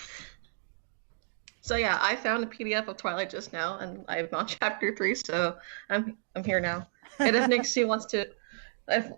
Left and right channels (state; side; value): silent; left; digital silence